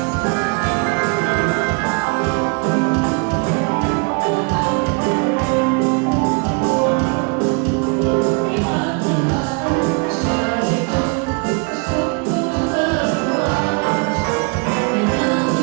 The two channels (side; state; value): left; quieter; 34.1 dB